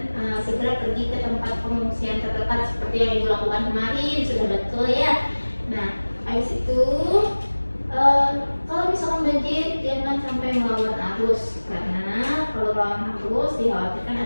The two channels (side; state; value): both; inverted; correlation -1.00